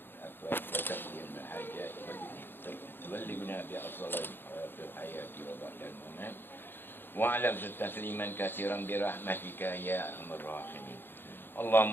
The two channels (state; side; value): late; right; 0.10 ms